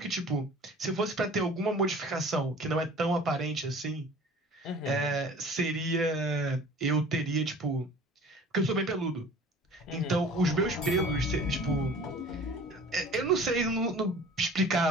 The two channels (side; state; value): both; normal; correlation 0.45